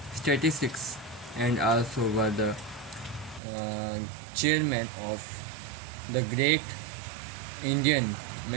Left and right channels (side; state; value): left; drops out; at 3.4 s